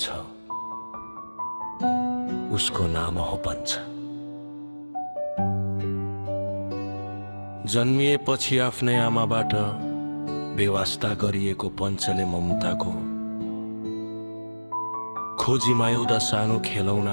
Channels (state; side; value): inverted; both; correlation -1.00